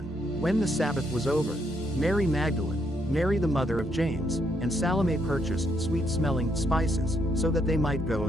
When the Sabbath was over, Mary Magdalene, Mary the mother of James, and Salome purchased sweet-smelling spices, so that they might go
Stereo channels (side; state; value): both; normal; correlation 0.74